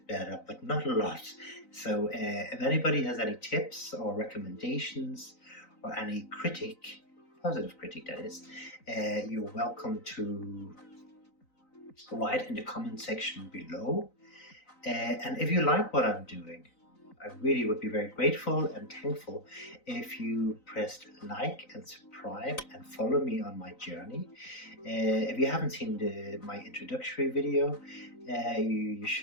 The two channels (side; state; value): right; late; 3.9 ms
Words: better, but not a lot. So if anybody has any tips or recommendations or any critique, positive critique that is, you're welcome to write in the comment section below. And if you like what I'm doing, I really would be very grateful and thankful if you pressed like and subscribe and follow me on my journey. If you haven't seen my introductory video, you